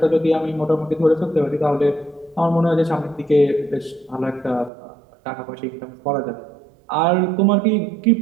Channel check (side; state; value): left; drops out; at 4.7 s